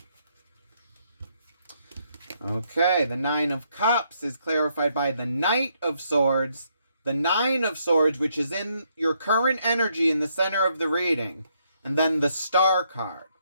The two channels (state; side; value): inverted; both; correlation -0.74